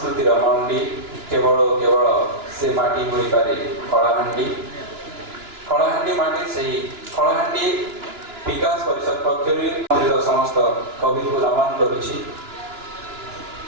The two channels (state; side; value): late; left; 2.9 ms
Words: मंडी केवल केवल से माटी होई पारे कलाहांडी कलाहांडी माटी से कलाहांडी विकास परिषद पक्षर समस्त कवि को नमन करुछि।